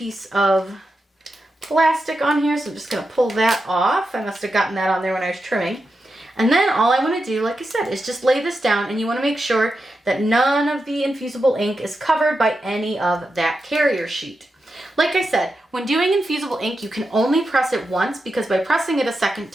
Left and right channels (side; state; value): both; normal; correlation 0.88